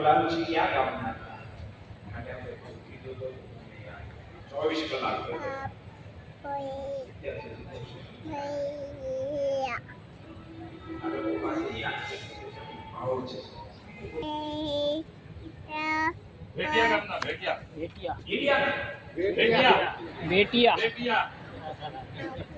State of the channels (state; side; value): identical; both; correlation 1.00